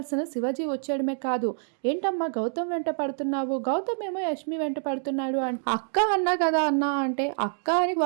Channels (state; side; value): silent; left; digital silence